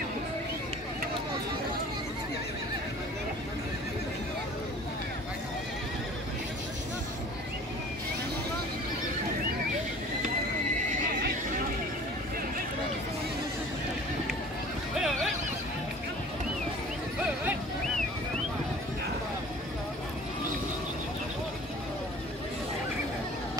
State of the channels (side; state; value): both; normal; correlation 0.46